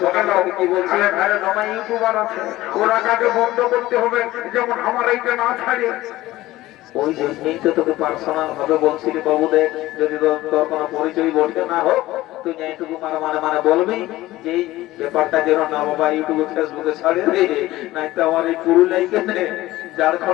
সকাল কি বলছি, ঘরে জমা ইউটিউবার আছে, ওরা কাকে বন্ধ করতে হবে, যেমন আমার এইটা না ছাড়ে। ওই জন্যই তো তোকে পার্সোনাল ভাবে বলছিলি বাবু, দেখ যদি তোর কোনো পরিচয় বলতে না হোক, তুই এইটুকু মানে বলবি যে এই ব্যাপারটা যেন না বাবা ইউটিউবে ফেসবুকে ছাড়ে রে, নাই তো আমার এই পুরুলিয়ায় কেনে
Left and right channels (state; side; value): quieter; right; 16.9 dB